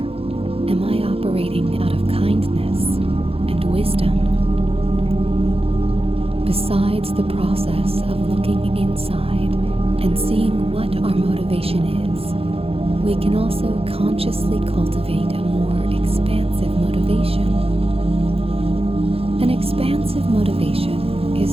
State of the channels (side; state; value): left; late; 0.28 ms